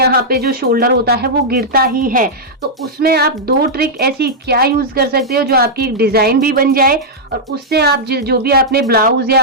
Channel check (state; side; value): normal; both; correlation -0.07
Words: पे जो शोल्डर होता है वो गिरता ही है। तो उसमें आप 2 ट्रिक ऐसी क्या यूज कर सकते हो जो आपकी डिजाइन भी बन जाए, और उससे आप जो भी आपने ब्लाउज